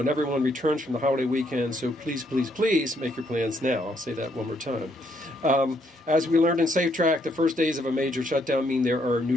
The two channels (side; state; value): both; normal; correlation 0.72